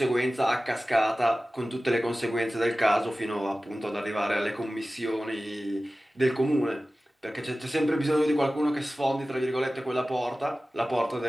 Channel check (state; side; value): normal; both; correlation 0.96